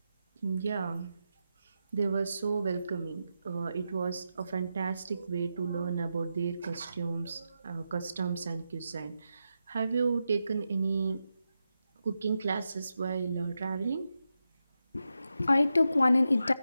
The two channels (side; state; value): both; inverted; correlation -0.88